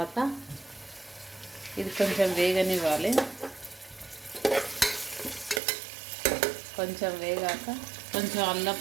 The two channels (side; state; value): left; drops out; at 5.6 s